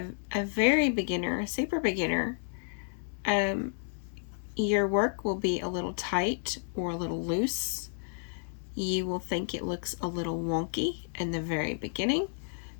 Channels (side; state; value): right; silent; digital silence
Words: a very beginner, a super beginner, your work will be a little tight or a little loose. You will think it looks a little wonky in the very beginning